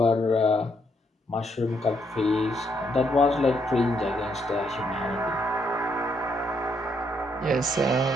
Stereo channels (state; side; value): normal; both; correlation 0.74